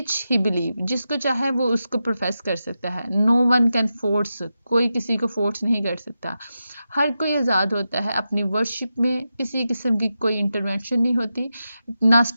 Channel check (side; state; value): both; inverted; correlation -0.90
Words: he believe, जिसको चाहे वो उसको प्रोफेस कर सकता है। नो वन कैन फोर्स, कोई किसी को फोर्स नहीं कर सकता। हर कोई आज़ाद होता है अपनी वर्शिप में, किसी किस्म की कोई इंटरवेंशन नहीं होती, ना